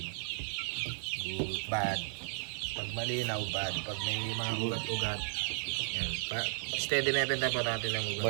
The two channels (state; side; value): silent; left; 55 dB below the other